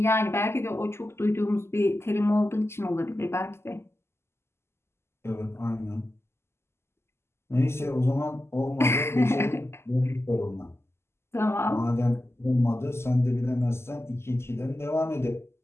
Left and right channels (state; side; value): late; right; 0.12 ms